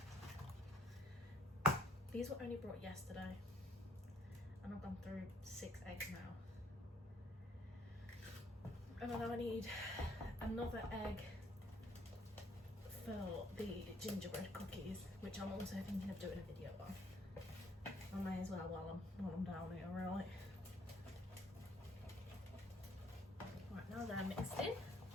These were only brought yesterday and I've gone through 6 eggs now. And then I need another egg for the gingerbread cookies, which I'm also thinking of doing a video on. I may as well while I'm down here, right? Right, now they're mixed in,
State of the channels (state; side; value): normal; both; correlation 0.65